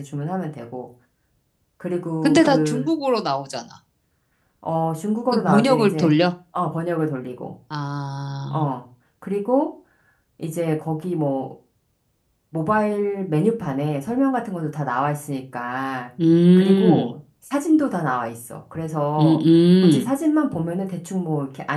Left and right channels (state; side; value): identical; both; correlation 1.00